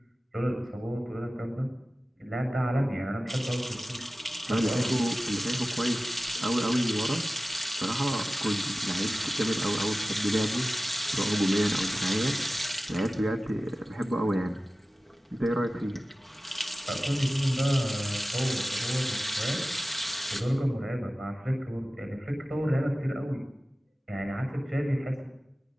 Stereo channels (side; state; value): both; normal; correlation 0.96